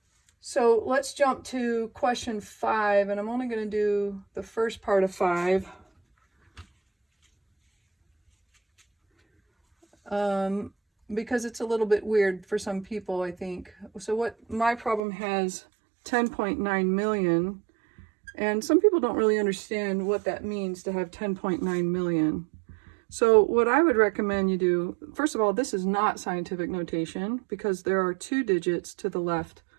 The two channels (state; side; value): drops out; left; at 15.0 s